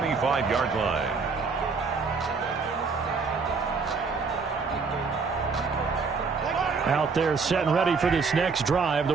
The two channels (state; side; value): quieter; left; 4.8 dB